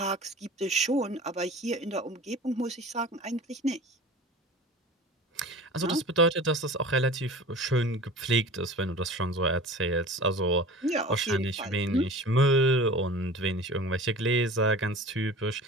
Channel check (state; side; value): normal; both; correlation 0.39